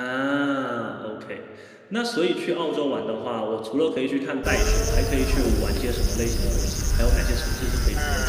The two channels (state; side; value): identical; both; correlation 1.00